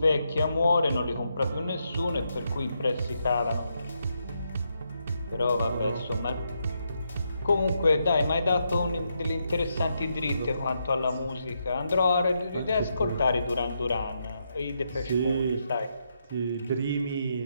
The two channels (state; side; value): inverted; both; correlation -0.81